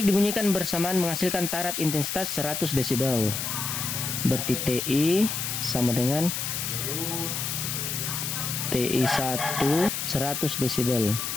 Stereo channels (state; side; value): noise; left; hiss, 3 dB below the sound